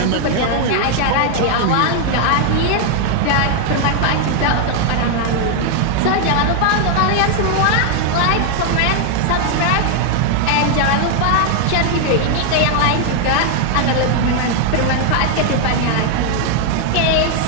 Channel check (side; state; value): both; different; correlation 0.00